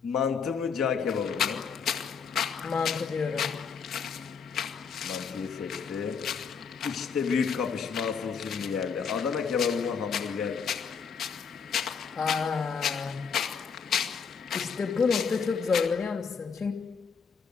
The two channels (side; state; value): right; quieter; 6.1 dB